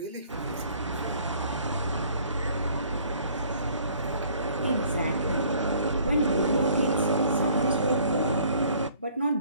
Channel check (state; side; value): inverted; both; correlation -0.57